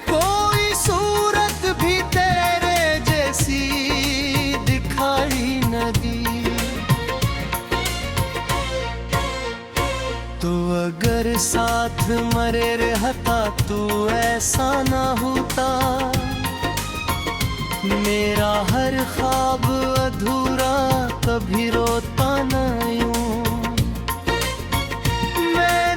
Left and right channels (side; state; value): both; identical; correlation 1.00